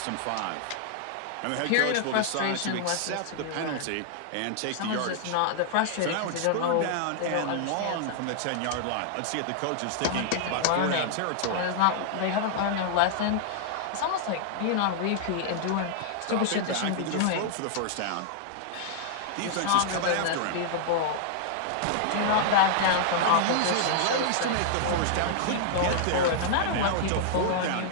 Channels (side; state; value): both; different; correlation -0.01